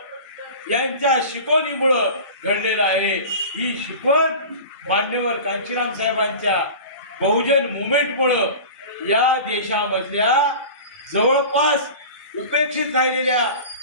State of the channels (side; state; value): both; inverted; correlation -0.36